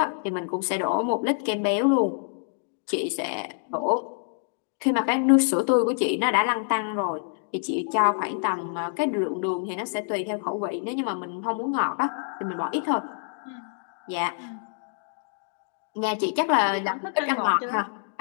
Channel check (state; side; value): silent; right; digital silence